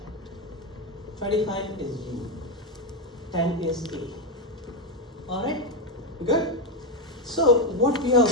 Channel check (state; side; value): normal; both; correlation 0.08